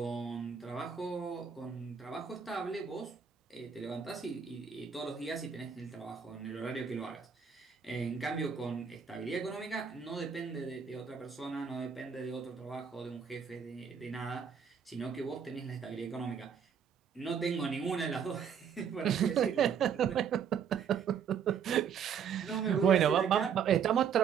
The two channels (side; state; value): left; quieter; 7.2 dB